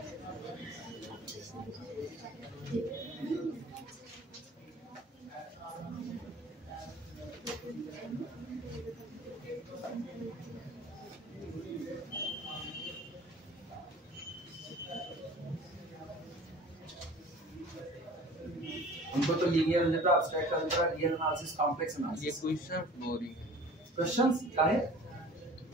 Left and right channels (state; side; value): normal; both; correlation 0.45